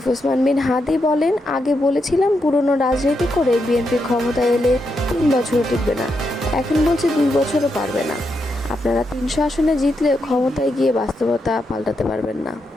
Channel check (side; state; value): both; normal; correlation 0.83